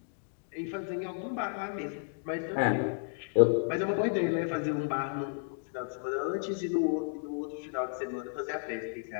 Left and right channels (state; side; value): silent; right; digital silence